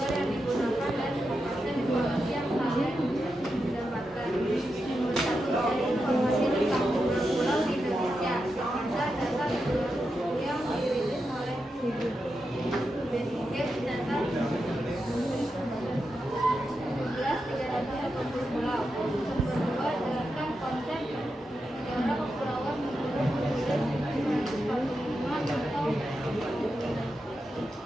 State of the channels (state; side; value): normal; both; correlation 0.87